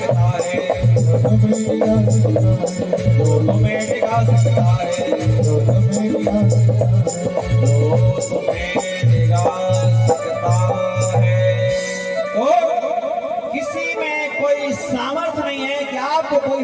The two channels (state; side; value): identical; both; correlation 1.00